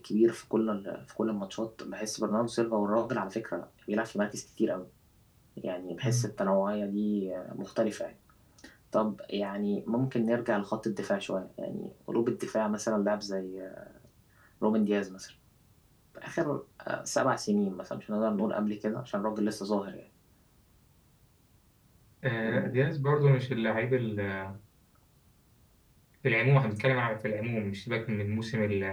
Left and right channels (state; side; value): identical; both; correlation 1.00